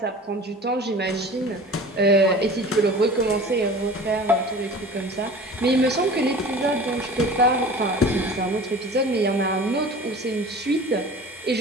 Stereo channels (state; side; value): normal; both; correlation 0.40